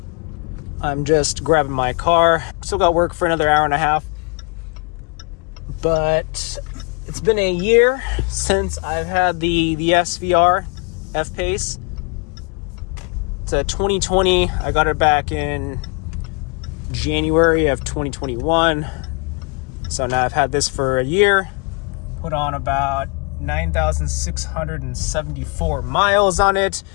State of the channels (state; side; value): quieter; right; 33.1 dB